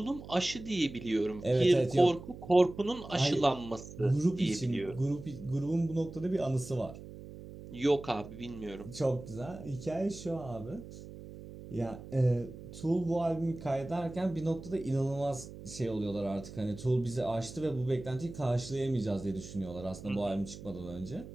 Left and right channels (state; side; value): noise; right; hum, 14 dB below the sound